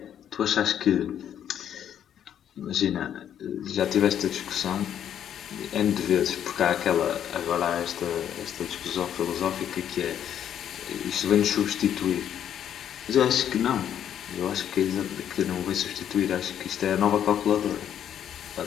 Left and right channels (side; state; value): right; quieter; 9.7 dB